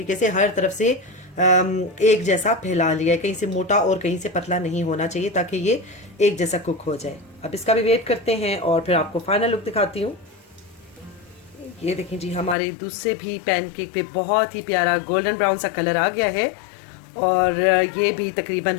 से हर तरफ से एक जैसा फैला लिया है, कहीं से मोटा और कहीं से पतला नहीं होना चाहिए, ताकि ये एक जैसा कुक हो जाए। अब इसका भी वेट करते हैं और फिर आपको फाइनल लुक दिखाती हूँ। ये देखें जी, हमारे दूसरे भी पैनकेक पे बहुत ही प्यारा गोल्डन ब्राउन सा कलर आ गया है और ये भी तकरीबन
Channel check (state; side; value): drops out; right; at 12.6 s